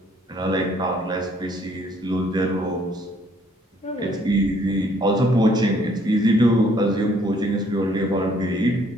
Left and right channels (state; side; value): normal; both; correlation 0.63